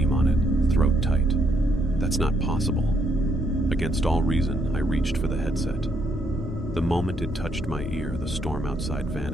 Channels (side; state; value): both; normal; correlation 0.73